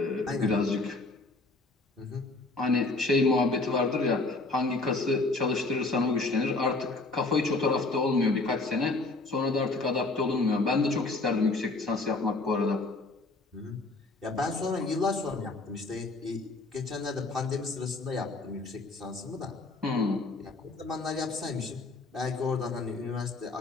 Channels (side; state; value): right; quieter; 3.3 dB